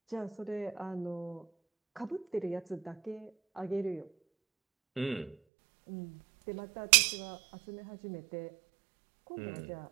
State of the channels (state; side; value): drops out; left; at 5.4 s